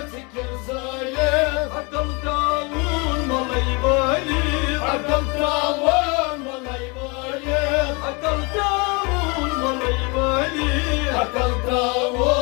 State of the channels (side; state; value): right; quieter; 29.7 dB